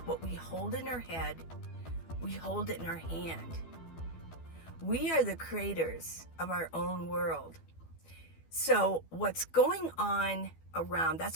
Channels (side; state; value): right; late; 12 ms